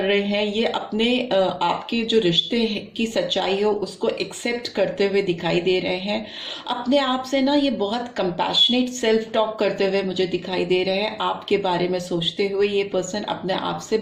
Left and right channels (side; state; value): both; identical; correlation 1.00